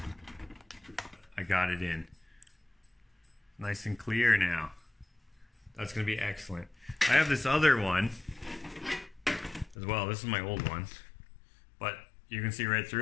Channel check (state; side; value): drops out; right; at 9.8 s